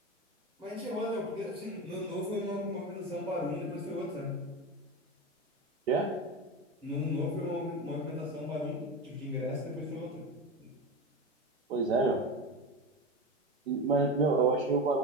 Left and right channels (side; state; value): both; normal; correlation 0.23